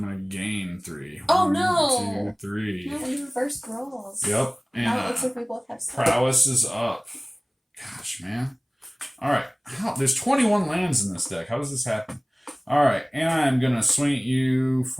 going to gain 3. Oh, 1, no. 2, 3. No, we reversed rolls. Yep. And Now it looks like we both have 6. prowess is up. Gosh, man. Alright. There's 21 lands in this deck. How does this happen? Alright, and I'm going to swing at you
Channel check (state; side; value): identical; both; correlation 1.00